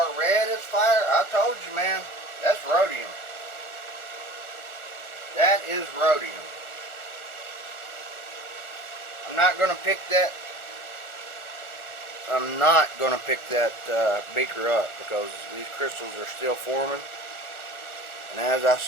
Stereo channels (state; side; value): late; right; 1.4 ms